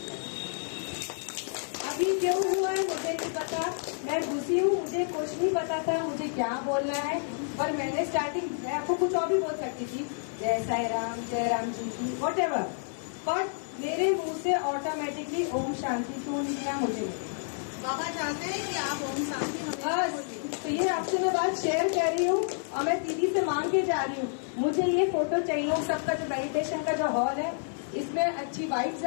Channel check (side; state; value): right; silent; 58 dB below the other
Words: अभी क्यों हुआ है मुझे नहीं पता, मैं घुसी हूँ, मुझे कुछ नहीं पता था मुझे क्या बोलना है, पर मैंने स्टार्टिंग, मैं आपको कुछ और भी बोल सकती थी, जय साई राम, जय राम जी की, वॉट एवर, बट मेरे मुंह से ऑटोमेटिकली ओम शांति क्यों निकला मुझे। बाबा चाहते हैं कि आप ओम शांति हमेशा। तो ये आपसे मैं बात शेयर कर रही हूँ और मैं दीदी से मांग के जा रही हूँ, मुझे ये फोटो चाहिए। सबका जो मेडिटेशन का जो हॉल है इसमें अच्छी वाइब्स